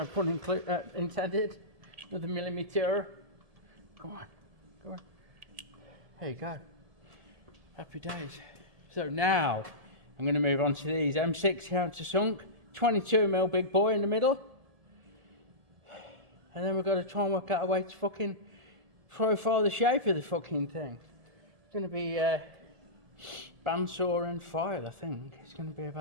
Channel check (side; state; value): left; late; 1.7 ms